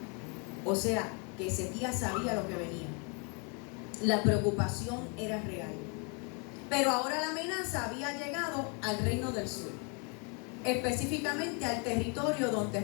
O sea, que Ezequías sabía lo que venía. La preocupación era real. Pero ahora la amenaza había llegado al reino del sur, específicamente al territorio donde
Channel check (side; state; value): right; quieter; 35.3 dB